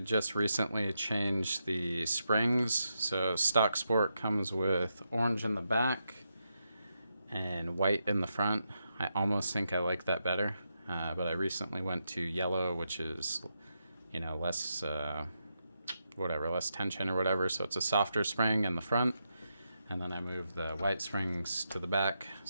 just recently changed the springs. So stock sport comes with orange in the back and white in the front. I almost think I like that better, but I recently went to yellow, which is, you know, less less tension or whatever, so it's a softer spring in the front, and then I moved the white springs to the back,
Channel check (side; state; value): both; inverted; correlation -0.84